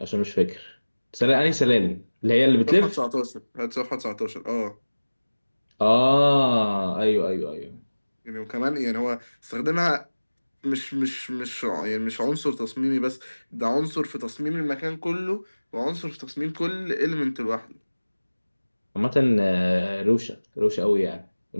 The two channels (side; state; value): both; inverted; correlation -1.00